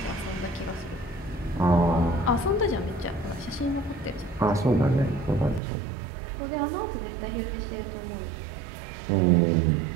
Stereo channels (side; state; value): left; drops out; at 5.6 s